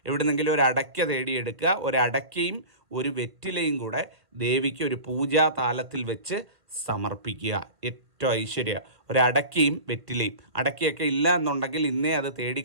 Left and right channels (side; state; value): left; late; 1.4 ms